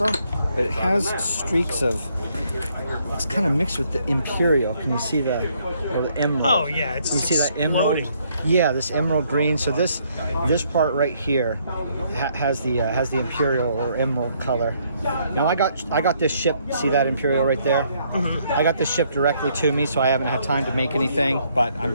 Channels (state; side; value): inverted; both; correlation -0.69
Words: but it has streaks of. It's kind of mixed with the imperial. Can you see the emerald? Oh yeah, it's you see that emerald? exploding. Yeah, this emerald green. So this part right here has the imperial or emerald color. Now I got this shipped. See that imperial right there? Mm-hmm. I got this shipped directly to me, so I haven't had time to make anything. But